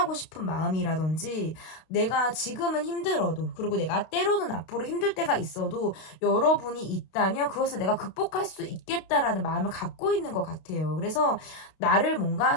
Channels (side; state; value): right; late; 32 ms